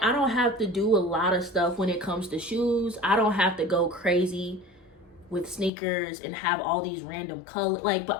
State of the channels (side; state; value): right; drops out; at 5.7 s